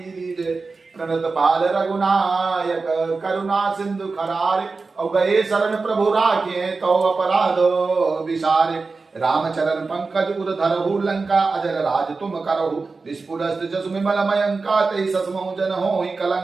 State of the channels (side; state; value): left; quieter; 4.1 dB